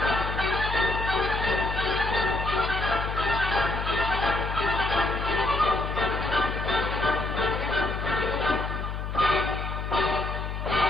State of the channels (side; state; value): left; noise; hum, 5 dB below the sound